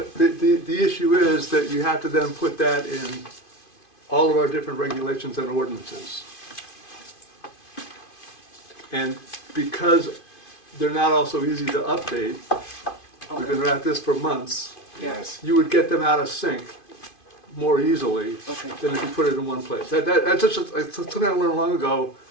issue is that you have to then put that in all of our different regulations and ordinances. And because they're not all so easy to update, we've been at this for months, Yes. you would get them out of sync more easily Okay. than if you put it in one place. That's just something I learned long ago.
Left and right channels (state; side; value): late; right; 2.5 ms